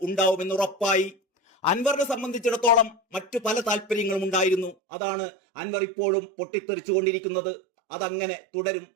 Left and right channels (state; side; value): drops out; left; at 4.8 s